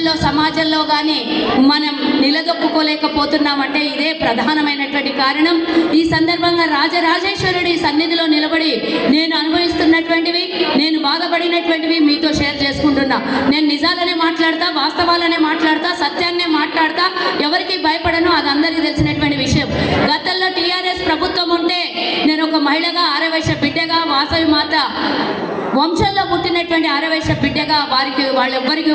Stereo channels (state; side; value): identical; both; correlation 1.00